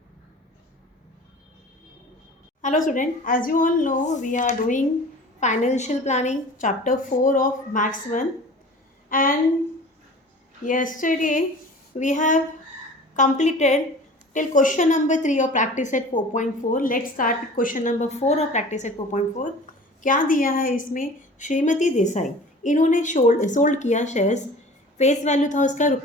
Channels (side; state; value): both; normal; correlation 0.42